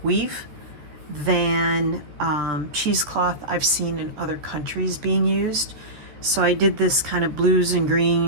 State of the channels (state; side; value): late; left; 13 ms